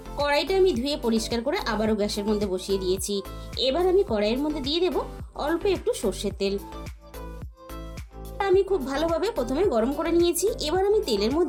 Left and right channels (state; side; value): identical; both; correlation 1.00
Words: কড়াইটা আমি ধুয়ে পরিষ্কার করে আবারও গ্যাসের মধ্যে বসিয়ে দিয়েছি। এবার আমি কড়াইয়ের মধ্যে দিয়ে দেব অল্প একটু সর্ষের তেল। আমি খুব ভালোভাবে প্রথমে গরম করে নিয়েছি। এবার আমি তেলের